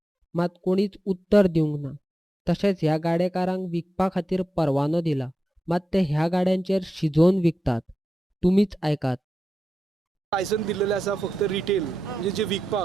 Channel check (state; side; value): normal; both; correlation 0.91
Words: मात कोणीच उत्तर दिवंक ना. तशेंच ह्या गाडेकारांक विकपा खातीर परवानो दिला, मात ते ह्या गाड्यांचेर शिजोवन विकतात. तुमीच ऐकात. लायसन दिलेलें आसा फक्त रिटेल म्हणजे जे